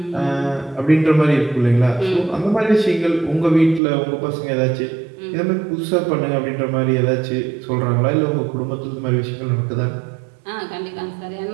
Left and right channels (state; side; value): drops out; left; at 3.8 s